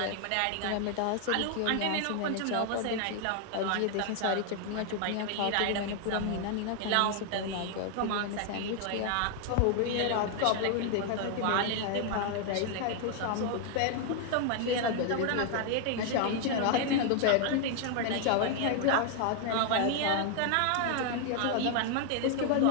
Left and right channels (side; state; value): both; different; correlation 0.00